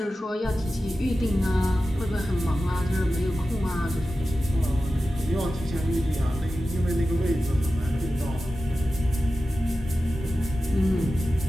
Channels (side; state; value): both; normal; correlation 0.94